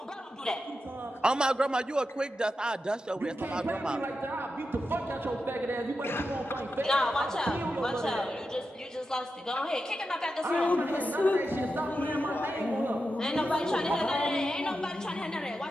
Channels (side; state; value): both; normal; correlation 0.89